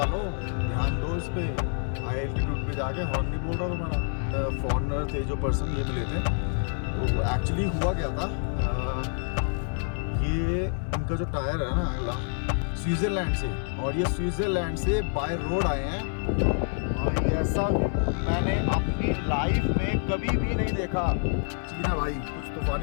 ध्यान दो इस पर। हाई एल्टीट्यूड पे जाके हॉर्न नहीं बोल रहा तुम्हारा। फॉरनर थे जो पर्सन ये मिले थे, तो एक्चुअली हुआ क्या था, ये इनका जो टायर है ना अगला स्विट्ज़रलैंड से, और ये स्विट्ज़रलैंड से बाय रोड आए हैं। भाई ऐसा मैंने अपनी लाइफ में कभी भी नहीं देखा। चीना भाई कुछ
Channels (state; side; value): silent; right; 55 dB below the other